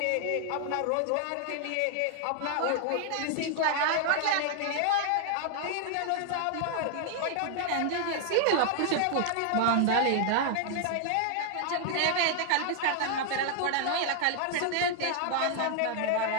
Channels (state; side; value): different; both; correlation 0.00